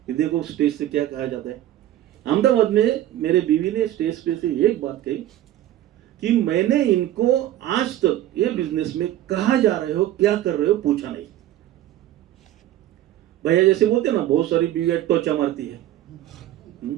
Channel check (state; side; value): quieter; left; 13.2 dB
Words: कि देखो स्टेज से क्या कहा जाता है। अहमदाबाद में मेरे बीवी ने स्टेज पे से एक बात कही कि मैंने इनको आज तक ये बिजनेस में कहाँ जा रहे हो, क्या कर रहे हो, पूछा नहीं। भैया जैसे बोलते ना, बहुत सारी बीवियां टोचा मारती है,